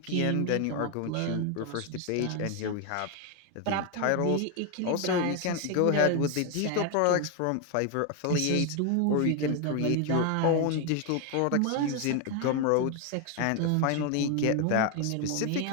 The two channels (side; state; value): both; different; correlation 0.01